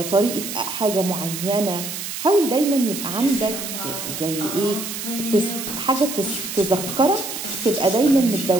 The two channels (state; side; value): noise; right; hiss, 7 dB below the sound